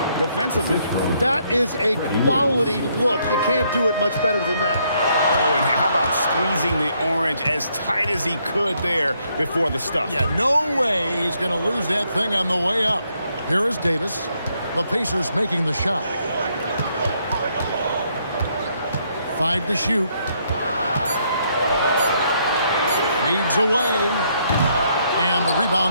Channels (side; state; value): both; inverted; correlation -0.72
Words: defensively? That is a quality look. You can't do it much better than that. Oh, and how about squeezing the orange as tight as he could there before the stuff? Yeah, no way he's going to lose that thing on the way up. Here is Davis. The Pacers making the shot. 5 to shoot. Fades away. And the